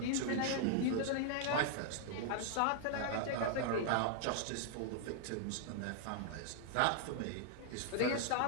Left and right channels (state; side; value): different; both; correlation -0.01